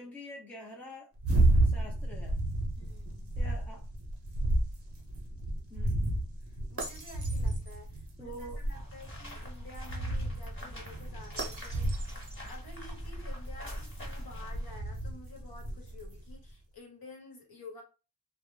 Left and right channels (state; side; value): normal; both; correlation 0.76